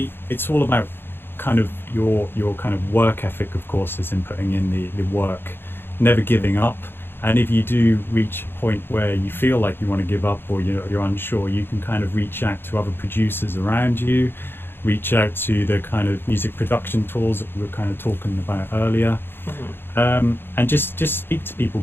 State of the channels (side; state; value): right; late; 0.10 ms